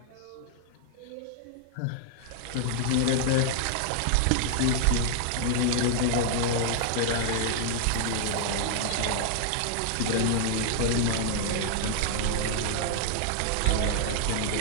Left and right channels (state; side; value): different; both; correlation -0.01